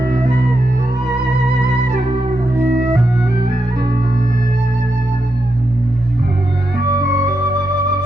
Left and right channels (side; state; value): both; normal; correlation 0.84